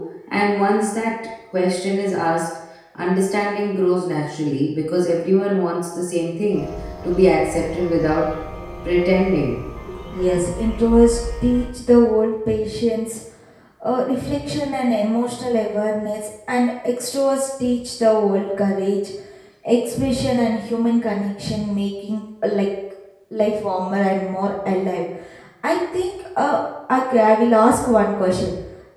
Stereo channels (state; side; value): identical; both; correlation 1.00